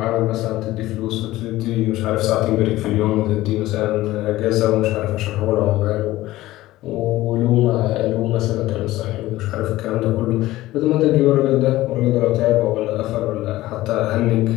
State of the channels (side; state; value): right; quieter; 16.7 dB